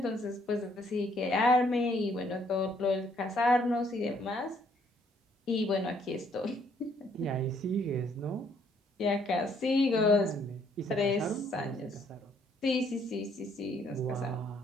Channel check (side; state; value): both; normal; correlation 0.66